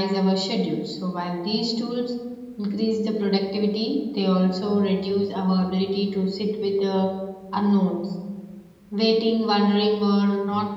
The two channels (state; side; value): identical; both; correlation 1.00